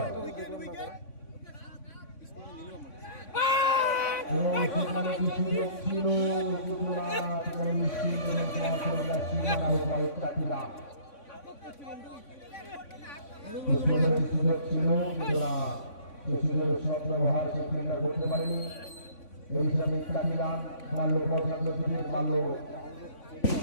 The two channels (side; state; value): right; late; 3.5 ms